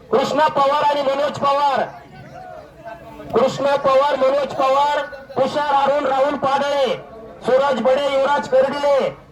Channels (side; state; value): both; identical; correlation 1.00